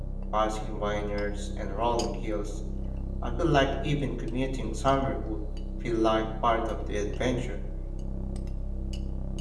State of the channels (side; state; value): both; identical; correlation 1.00